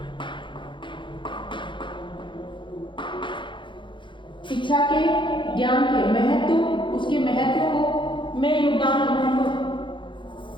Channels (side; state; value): right; late; 0.23 ms